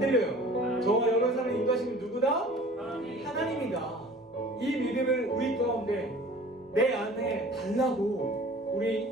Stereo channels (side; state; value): both; normal; correlation 0.46